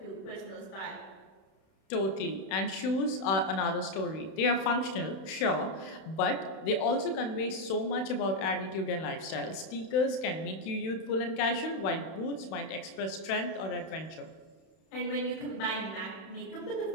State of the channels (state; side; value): late; right; 31 ms